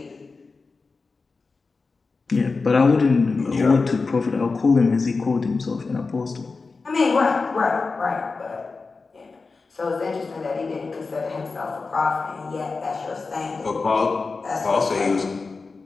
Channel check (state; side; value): quieter; right; 4.2 dB